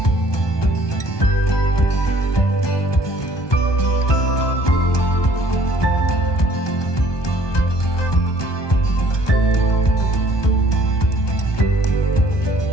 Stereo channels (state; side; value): late; right; 1.2 ms